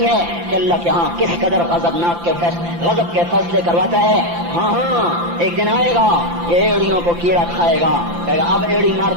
ہے کہ اللہ کے ہاں کس قدر غضب کے فیصلے کرواتا ہے۔ ہاں ایک دن آئے گا یہ ایڑیوں کو کیڑا کھائے گا، کہے گا اب ایڑی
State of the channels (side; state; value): left; late; 5.8 ms